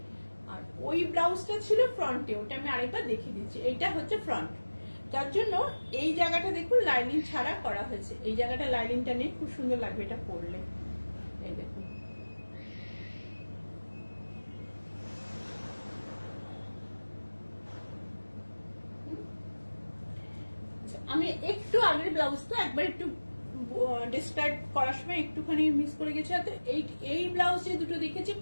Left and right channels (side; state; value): both; inverted; correlation -1.00